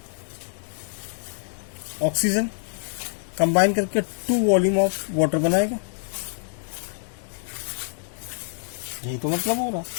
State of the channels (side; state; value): right; silent; digital silence